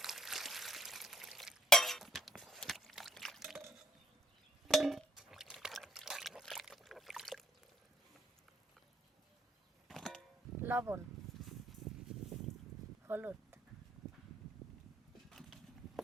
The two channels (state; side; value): normal; both; correlation 0.66